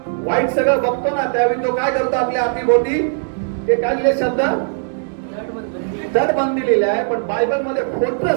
वाईट सगळं बघतो ना, त्यावेळी तो काय करतो आपल्या अवतीभोवती, ते काय लिहिले शब्द, तटबंदी लिहिले आहे. पण बायबल मध्ये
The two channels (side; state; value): left; silent; 67 dB below the other